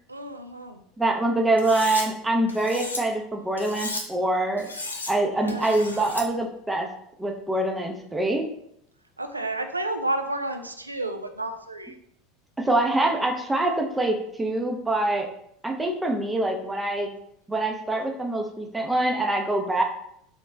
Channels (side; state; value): both; normal; correlation 0.60